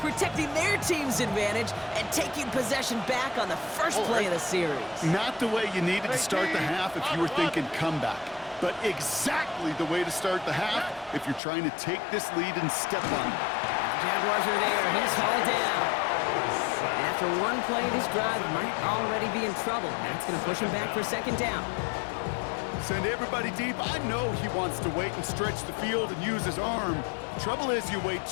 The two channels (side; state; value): right; drops out; at 11.4 s